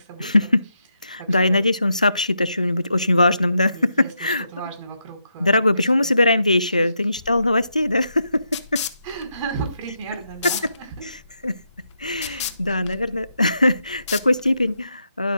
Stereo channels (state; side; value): inverted; both; correlation -0.82